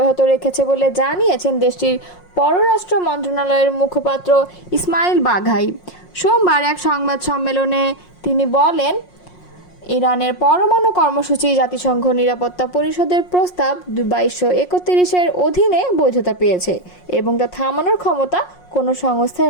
রেখেছে বলে জানিয়েছেন দেশটির পররাষ্ট্র মন্ত্রণালয়ের মুখপাত্র ইসমাইল বাঘাই। সোমবার এক সংবাদ সম্মেলনে তিনি বলেন, ইরানের পরমাণু কর্মসূচি জাতিসংঘ নিরাপত্তা পরিষদের প্রস্তাব 2231-এর অধীনে বৈধতা পেয়েছে এবং তা থামানোর ক্ষমতা কোনো সংস্থার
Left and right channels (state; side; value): late; right; 5.5 ms